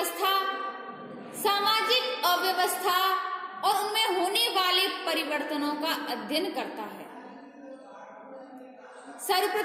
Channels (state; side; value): identical; both; correlation 1.00